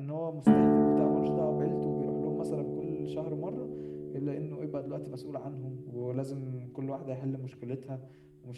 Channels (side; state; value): both; identical; correlation 1.00